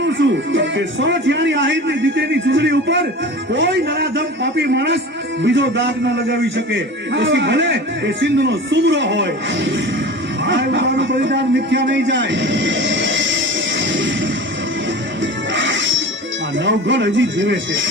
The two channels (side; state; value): both; normal; correlation 0.36